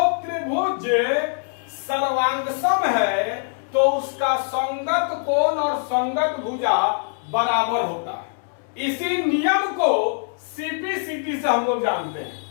त्रिभुज सर्वांगसम है तो उसका संगत कोण और संगत भुजा बराबर होता है। इसी नियम को सीपीसीटी से हम लोग जानते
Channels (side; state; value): right; silent; 63 dB below the other